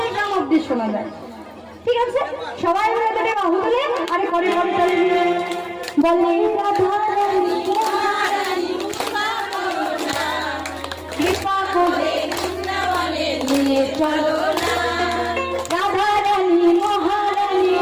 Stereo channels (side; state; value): both; identical; correlation 1.00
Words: গ্রাম অব্দি শোনা যায়। ঠিক আছে, সবাই মিলে তোকে বাহু তুলে আরে করে করে চলে বলে রাধারানী কৃপা করে নিয়ে চলো।